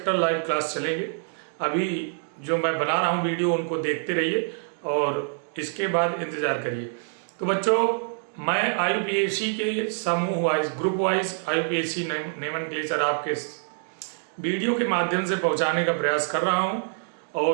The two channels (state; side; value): silent; left; digital silence